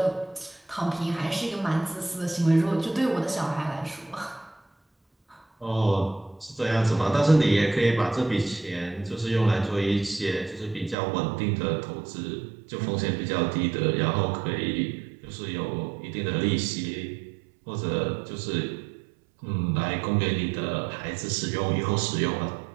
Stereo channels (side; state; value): left; drops out; at 11.0 s